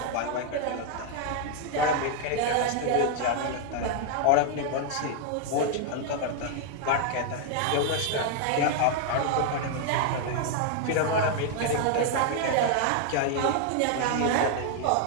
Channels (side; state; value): both; different; correlation 0.00